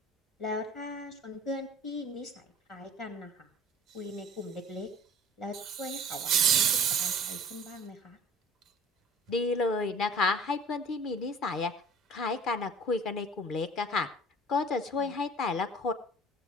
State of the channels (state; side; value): normal; both; correlation 0.45